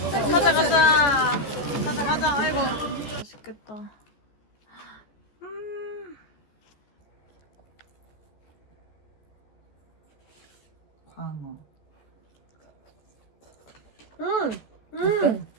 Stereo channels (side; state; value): right; late; 14 ms